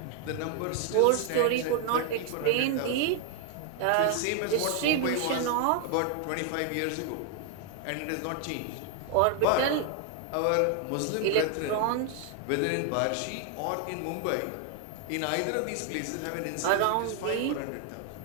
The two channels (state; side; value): different; both; correlation 0.00